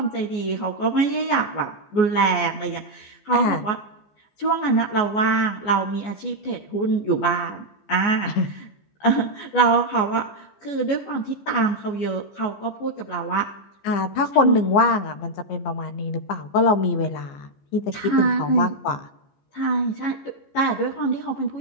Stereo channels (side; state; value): right; late; 15 ms